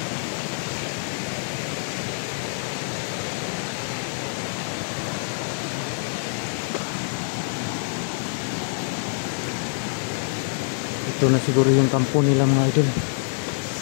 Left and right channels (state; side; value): silent; right; 58 dB below the other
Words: Ito na siguro yung kampo nila mga idol.